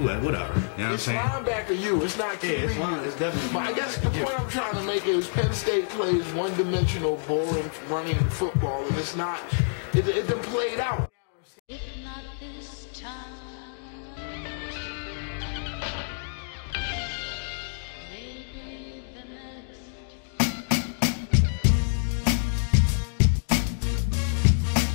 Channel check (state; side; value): silent; right; digital silence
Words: Whatever. You know what I'm saying? It's linebacker you, it's not QB. Yeah, it's definitely. But I guess the point I'm trying to make is Penn State plays one-dimensional, boring, running football, and it's not, it done played out.